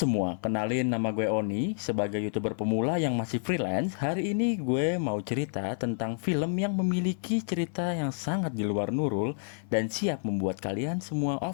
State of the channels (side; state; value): right; silent; 58 dB below the other